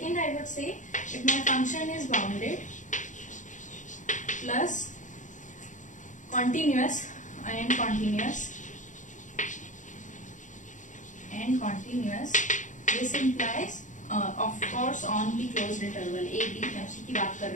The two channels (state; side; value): late; right; 0.36 ms